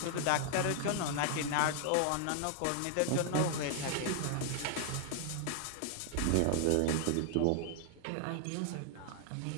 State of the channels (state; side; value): different; both; correlation 0.00